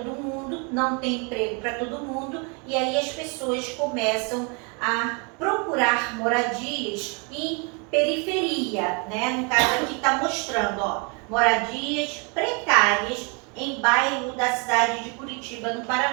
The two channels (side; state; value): left; quieter; 33.7 dB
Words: mundo, não tem emprego para todo mundo, e aí as pessoas começam a procurar moradias em periferia, né? No caso aqui está mostrando, ó, moradias precárias em bairro da cidade de Curitiba, no